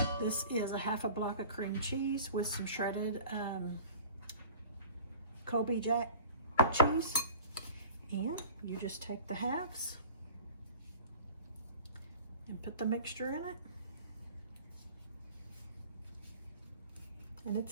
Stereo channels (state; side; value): inverted; both; correlation -0.43